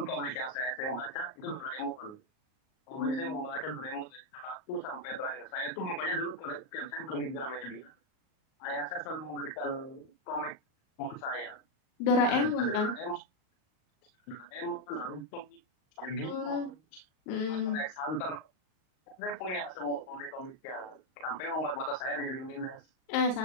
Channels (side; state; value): right; late; 38 ms